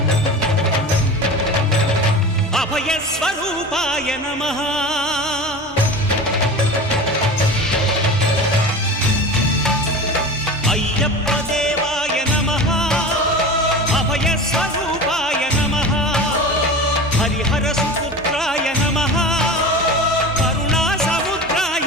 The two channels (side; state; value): both; normal; correlation 0.32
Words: అభయ స్వరూపాయ నమః అయ్యప్ప దేవాయ నమః అభయ స్వరూపాయ నమః హరిహర సుపుత్రాయ నమః కరుణా